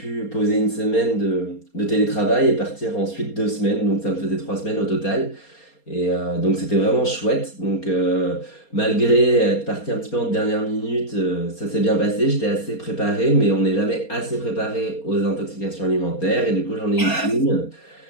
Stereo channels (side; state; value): right; late; 4.3 ms